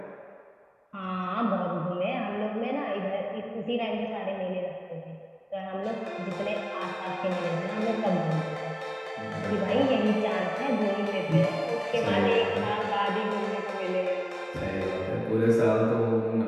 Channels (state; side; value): identical; both; correlation 1.00